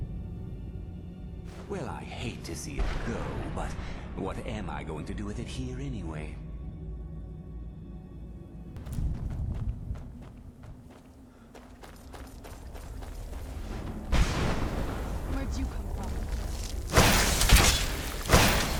Well, I hate to see it go, but what am I going to do with it here anyway? Where'd you come from?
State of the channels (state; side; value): identical; both; correlation 1.00